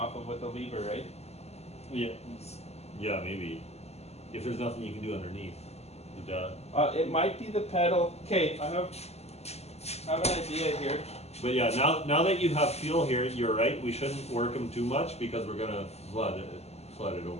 of with a lever, right? yeah, maybe. If there's nothing you can do underneath. It might be the pedal. Okay, I have an idea here. But yeah, now that you have fuel here, you're right. We shouldn't work them too much because we're gonna flood it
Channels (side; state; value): right; late; 0.30 ms